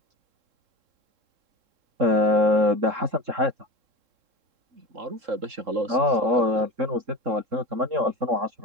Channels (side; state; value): left; late; 3.7 ms